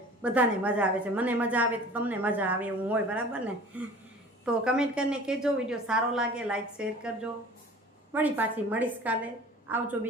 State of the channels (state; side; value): normal; both; correlation 0.44